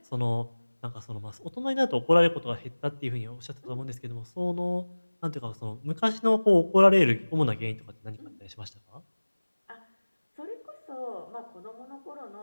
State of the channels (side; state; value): both; inverted; correlation -1.00